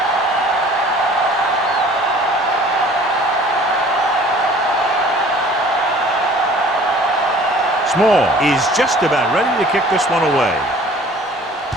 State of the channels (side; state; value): both; normal; correlation 0.50